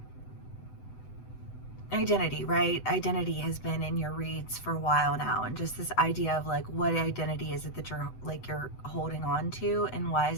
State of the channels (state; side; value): late; right; 8.0 ms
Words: identity, right? Identity has been in your reads for a while now, and just this idea of like, what identity is it that you're holding on to, and why